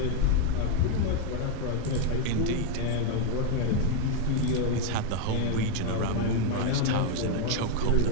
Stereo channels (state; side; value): different; both; correlation 0.01